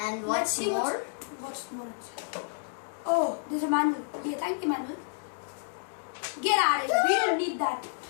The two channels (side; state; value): right; silent; 58 dB below the other